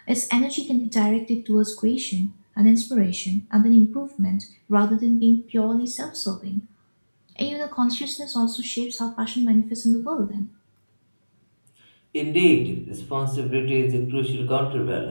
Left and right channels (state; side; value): inverted; both; correlation -1.00